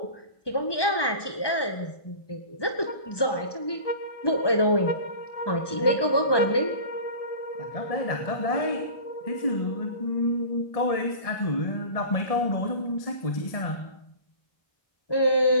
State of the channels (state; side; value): late; right; 1.2 ms